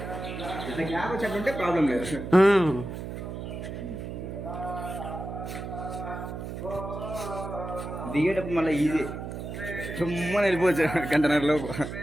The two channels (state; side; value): noise; right; hum, 7 dB below the sound